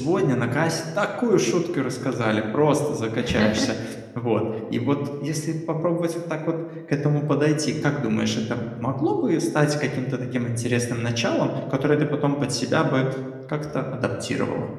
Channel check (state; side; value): identical; both; correlation 1.00